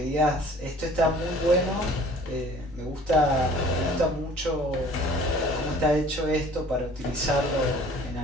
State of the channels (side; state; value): both; normal; correlation 0.51